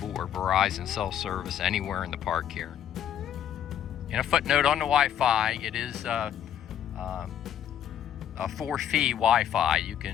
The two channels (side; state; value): right; quieter; 9.9 dB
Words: or Verizon cell service anywhere in the park here. And a footnote on the Wi-Fi, it is a for-fee Wi-Fi. You